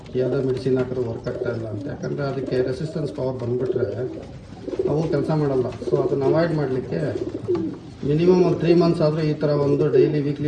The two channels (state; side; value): identical; both; correlation 1.00